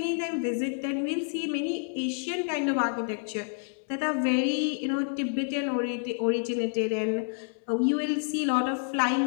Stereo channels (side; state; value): right; silent; 59 dB below the other